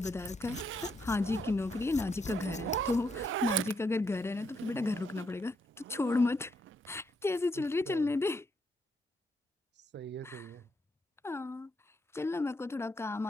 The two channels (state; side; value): normal; both; correlation 0.78